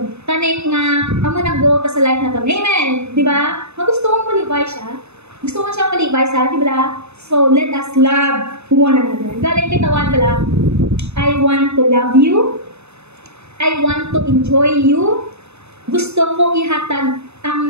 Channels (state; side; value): late; left; 0.80 ms